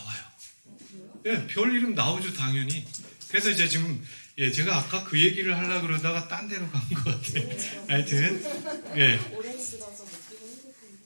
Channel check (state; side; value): inverted; both; correlation -1.00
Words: 별 이름 나오죠, 당연히. 그래서 이제 지금 제가 아까 그 얘기를 하려고 그러다가 딴 데로 간 것 같아요. 하여튼